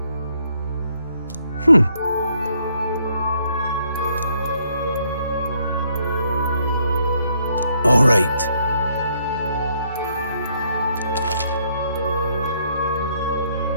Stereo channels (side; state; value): both; inverted; correlation -0.70